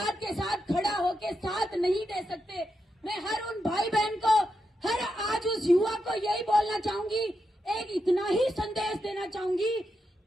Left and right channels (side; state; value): both; normal; correlation 0.85